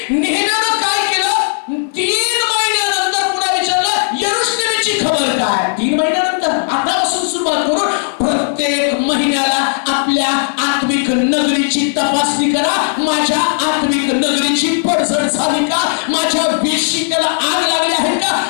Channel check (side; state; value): right; silent; 68 dB below the other